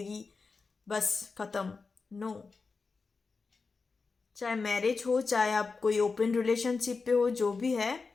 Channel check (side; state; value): right; quieter; 4.5 dB